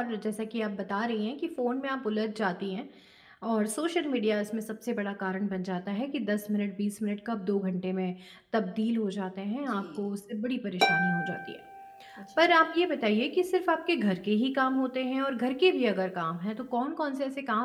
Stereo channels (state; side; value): identical; both; correlation 1.00